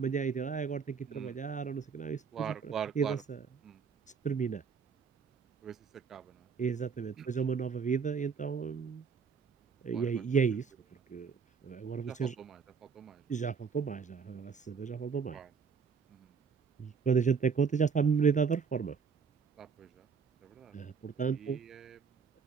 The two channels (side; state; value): left; quieter; 6.0 dB